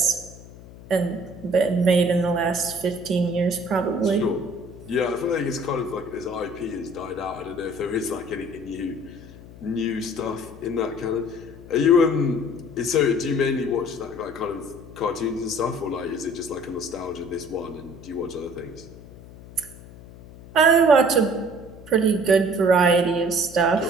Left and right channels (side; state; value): left; noise; hum, 18 dB below the sound